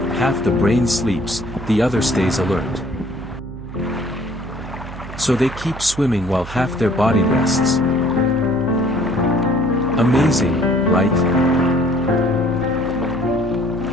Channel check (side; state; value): right; noise; hum, 12 dB below the sound